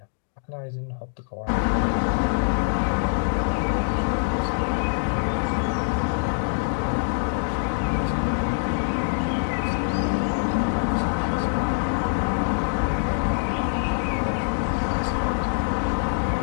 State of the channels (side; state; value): right; silent; 62 dB below the other